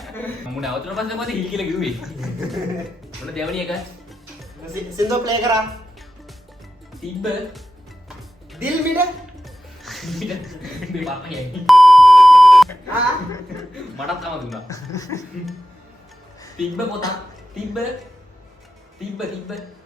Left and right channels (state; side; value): normal; both; correlation 0.91